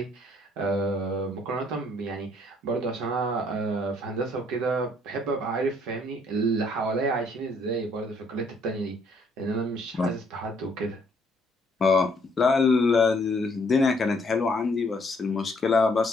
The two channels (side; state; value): both; normal; correlation 0.66